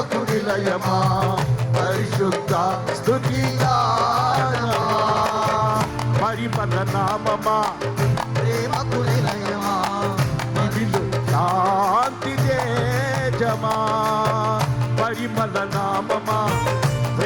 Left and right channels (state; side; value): identical; both; correlation 1.00